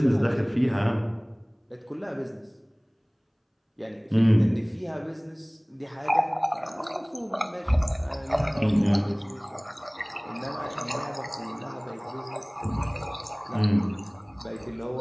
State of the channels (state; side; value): identical; both; correlation 1.00